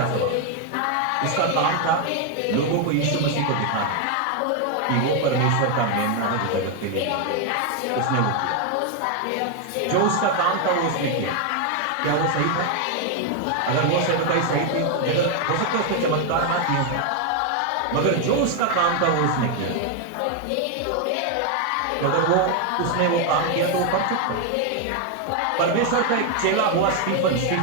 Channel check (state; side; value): different; both; correlation 0.01